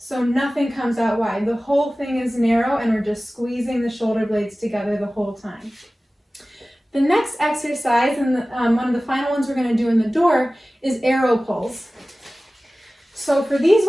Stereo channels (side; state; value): both; normal; correlation 0.97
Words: nothing comes out wide. The whole thing is narrow and we're just squeezing the shoulder blades together the whole time. The next exercise, and one of the final ones we're going to do in the door, is arrow pulls. So for these